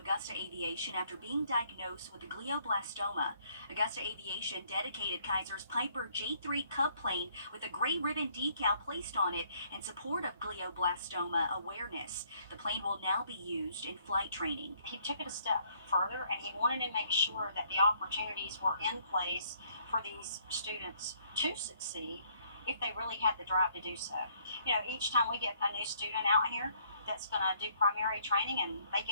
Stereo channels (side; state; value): both; inverted; correlation -0.65